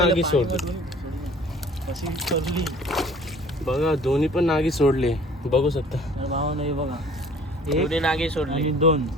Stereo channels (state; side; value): normal; both; correlation 0.51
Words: सोडले। कशी सोडली बघा दोन्ही पण नागी सोडले, बघू शकता। तर भावानं हे बघा, दोन्ही नागी सोडली आणि